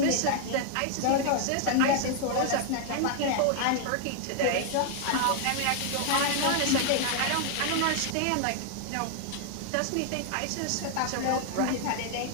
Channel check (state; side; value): different; both; correlation 0.00